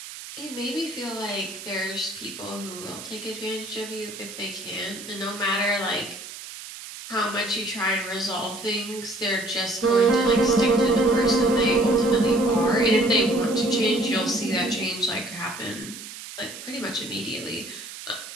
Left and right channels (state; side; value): noise; right; hiss, 12 dB below the sound